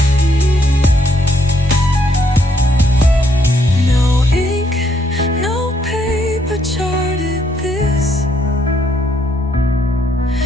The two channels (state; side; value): normal; both; correlation 0.72